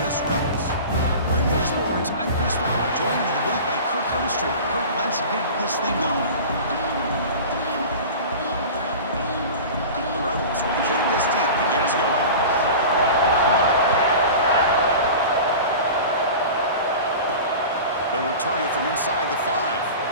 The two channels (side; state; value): both; inverted; correlation -0.35